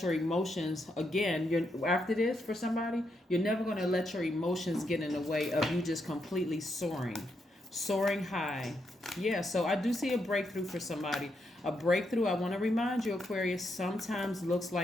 your emotions, again, after this for somebody, you're never going to let your emotions get in the way of you just completely soaring high. Yeah, so I do see a breakthrough for somebody. A breakthrough, I want to remind you, Aquarius, sometimes looks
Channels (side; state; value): both; normal; correlation 0.81